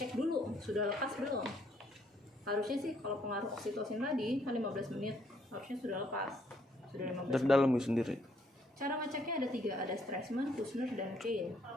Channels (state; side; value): normal; both; correlation 0.69